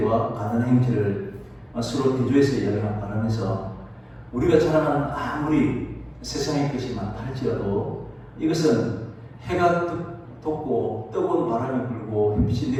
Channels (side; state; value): both; identical; correlation 1.00